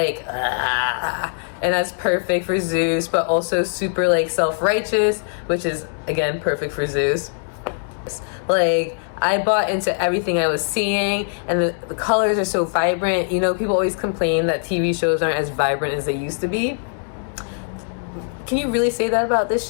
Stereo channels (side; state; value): right; silent; digital silence